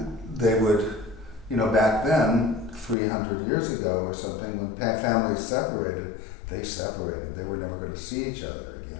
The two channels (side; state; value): right; drops out; at 3.0 s